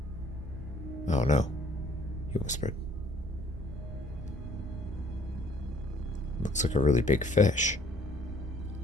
Oh no, he whispered. Looks like a really big fish.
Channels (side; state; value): both; normal; correlation 0.59